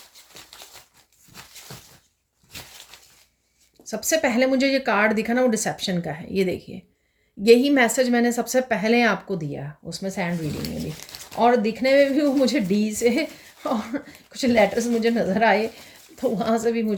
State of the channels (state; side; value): identical; both; correlation 1.00